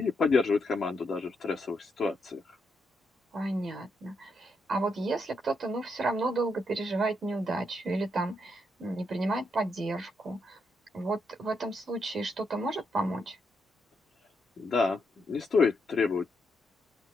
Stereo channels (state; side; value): normal; both; correlation 0.80